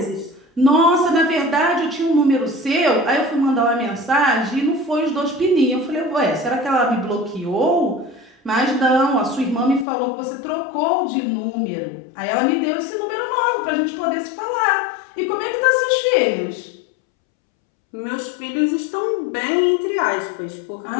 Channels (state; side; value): drops out; right; at 9.9 s